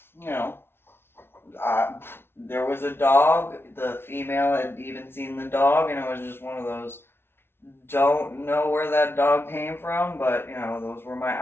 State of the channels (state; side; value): late; right; 0.11 ms